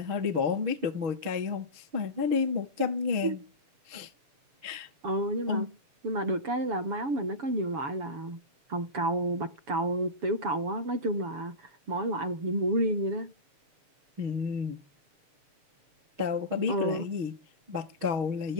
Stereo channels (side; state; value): left; late; 6.4 ms